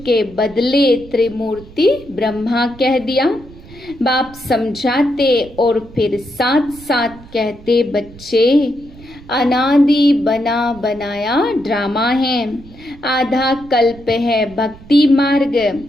के बदले त्रिमूर्ति ब्रह्मा कह दिया। बाप समझाते और फिर साथ साथ कहते बच्चे अनादि बना बनाया ड्रामा है। आधा कल्प है भक्ति मार्ग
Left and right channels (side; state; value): right; noise; rumble, 20 dB below the sound